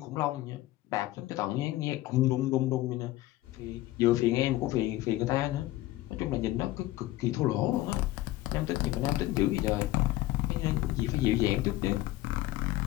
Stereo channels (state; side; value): quieter; right; 16.6 dB